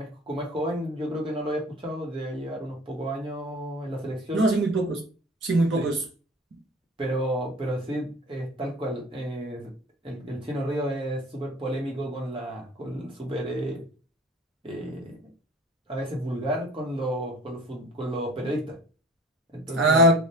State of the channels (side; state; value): both; normal; correlation 0.44